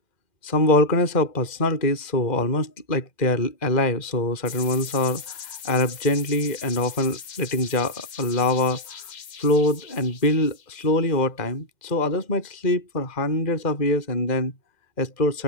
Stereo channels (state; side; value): late; right; 2.1 ms